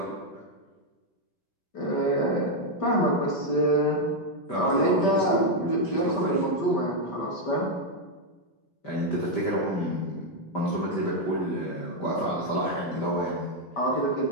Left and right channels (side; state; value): right; late; 5.1 ms